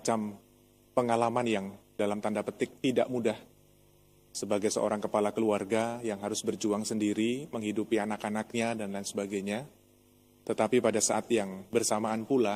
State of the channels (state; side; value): identical; both; correlation 1.00